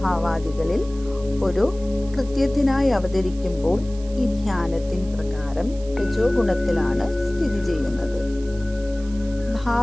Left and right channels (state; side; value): noise; right; hiss, 22 dB below the sound